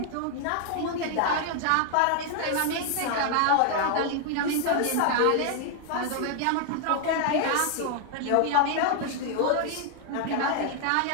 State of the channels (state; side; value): different; both; correlation 0.00